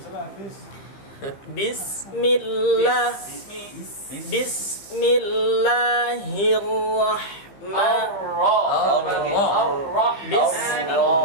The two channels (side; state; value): right; late; 15 ms